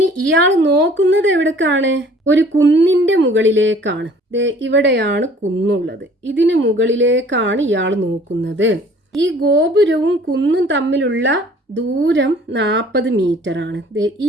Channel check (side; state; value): both; normal; correlation 0.53